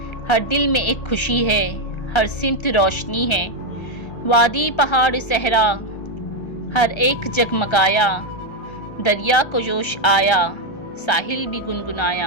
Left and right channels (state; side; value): late; right; 1.3 ms